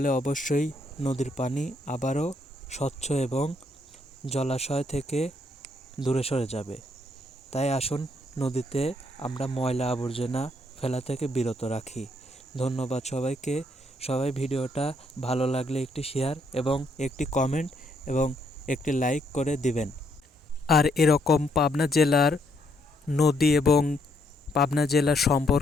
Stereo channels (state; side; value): normal; both; correlation 0.73